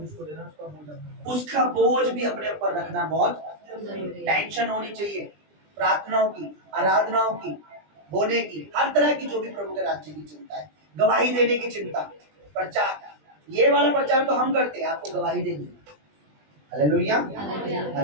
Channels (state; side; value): late; left; 20 ms